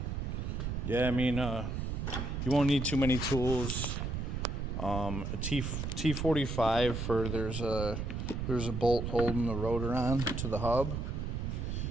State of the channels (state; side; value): noise; right; rumble, 3 dB below the sound